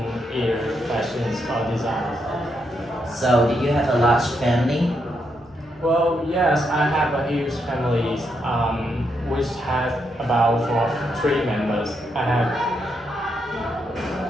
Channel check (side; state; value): right; noise; hum, 27 dB below the sound